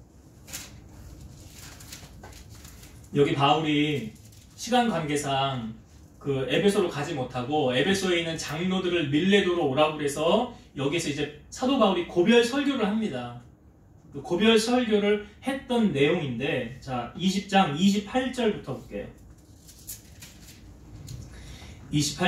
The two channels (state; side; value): identical; both; correlation 1.00